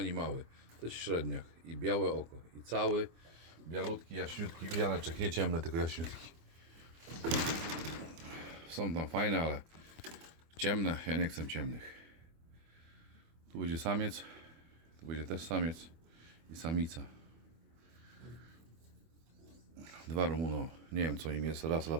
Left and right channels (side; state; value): left; late; 24 ms